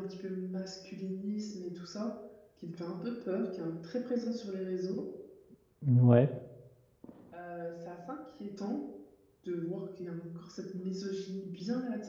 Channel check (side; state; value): both; identical; correlation 1.00